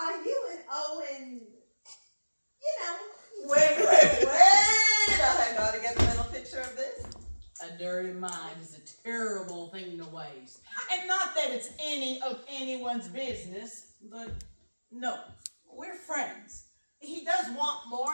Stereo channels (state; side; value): inverted; both; correlation -1.00